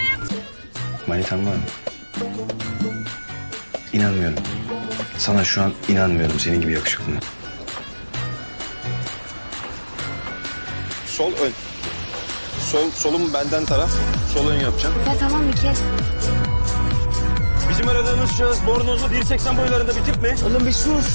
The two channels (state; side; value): inverted; both; correlation -1.00